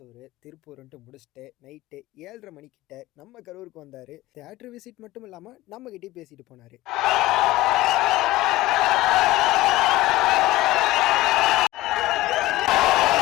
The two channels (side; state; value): right; quieter; 17.6 dB